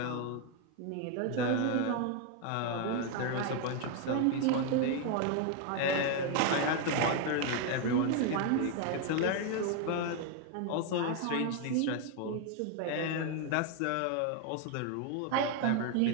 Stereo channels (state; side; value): different; both; correlation 0.01